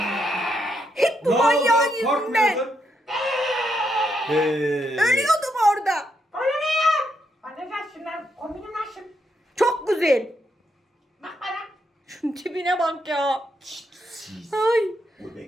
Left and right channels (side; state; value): both; normal; correlation 0.79